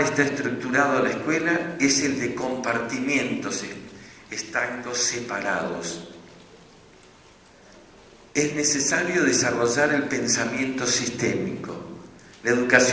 estructurado la escuela es el de compartimientos estancos separados. Es necesario desarrollar el pensamiento sistémico. La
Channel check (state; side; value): identical; both; correlation 1.00